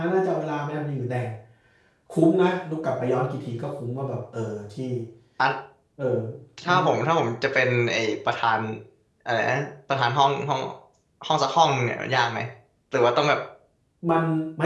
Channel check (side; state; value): both; identical; correlation 1.00